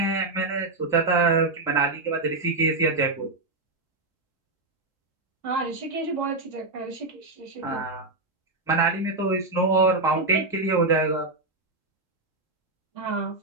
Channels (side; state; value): left; quieter; 3.2 dB